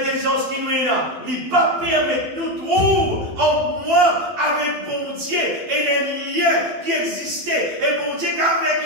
qui nous est là, il ne pas permettre nous trouver en moi avec bon Dieu et les liens qui existaient. Et bon Dieu qui a fait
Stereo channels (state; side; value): late; left; 12 ms